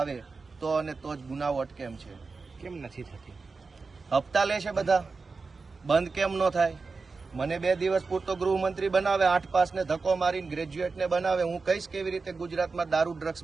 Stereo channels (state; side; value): quieter; left; 4.3 dB